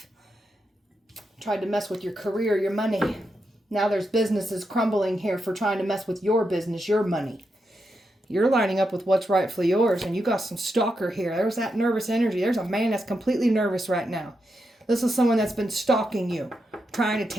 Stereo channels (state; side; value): normal; both; correlation 0.85